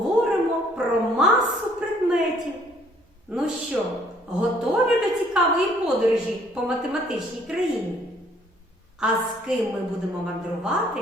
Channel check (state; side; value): normal; both; correlation 0.62